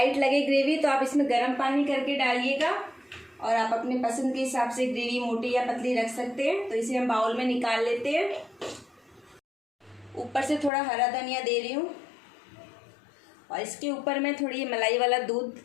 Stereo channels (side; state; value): right; drops out; at 10.7 s